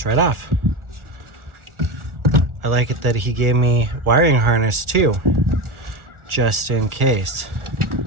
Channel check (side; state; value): left; late; 1.4 ms